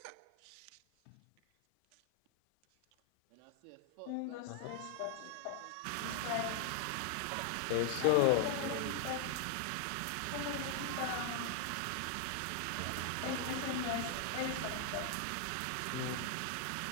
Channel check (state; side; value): different; both; correlation 0.00